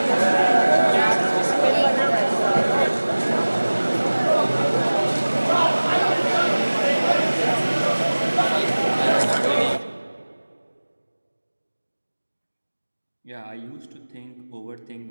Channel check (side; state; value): both; inverted; correlation -1.00